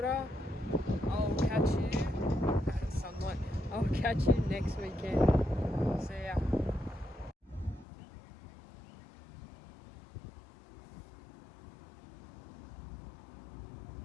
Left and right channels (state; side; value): drops out; right; at 7.9 s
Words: I'll catch you, sunlight, I'll catch you next weekend. See ya.